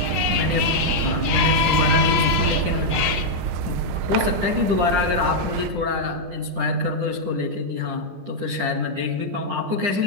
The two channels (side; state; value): left; late; 10 ms